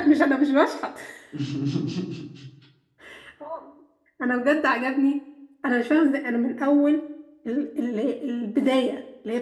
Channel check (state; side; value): identical; both; correlation 1.00